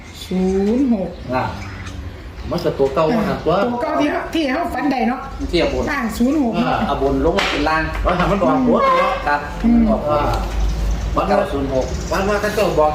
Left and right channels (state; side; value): identical; both; correlation 1.00